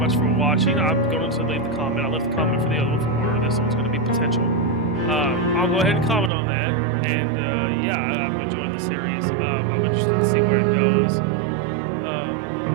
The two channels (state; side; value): drops out; left; at 6.3 s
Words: for watching. I'm going to leave the comment. I left the comment for the other one for order. This one's going to be potential. I'll go ahead and comment on that. And yeah, I'm enjoying the series. I'm interested to see where it goes.